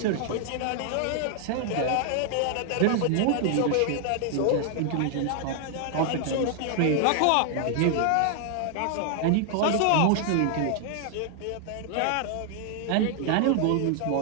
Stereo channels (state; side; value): different; both; correlation 0.00